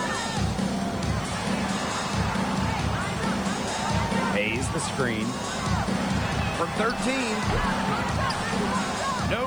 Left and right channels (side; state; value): left; noise; hiss, 26 dB below the sound